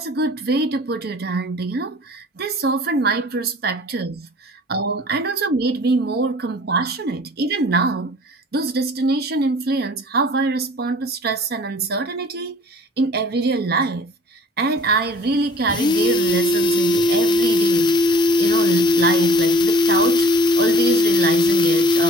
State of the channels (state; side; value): normal; both; correlation 0.51